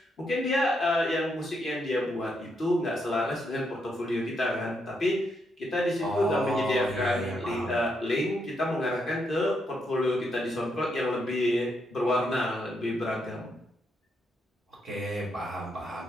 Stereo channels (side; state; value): both; normal; correlation 0.79